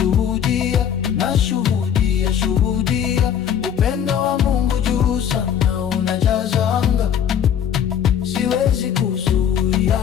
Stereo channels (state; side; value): quieter; right; 8.8 dB